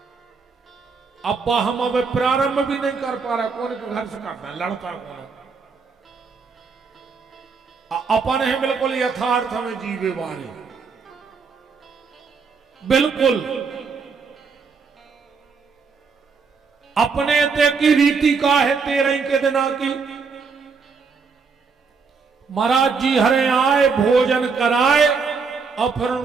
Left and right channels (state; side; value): quieter; left; 5.1 dB